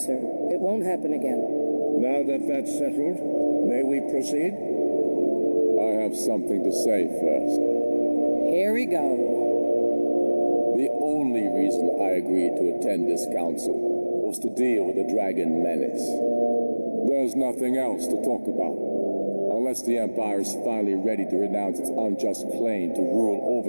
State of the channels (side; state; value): both; inverted; correlation -1.00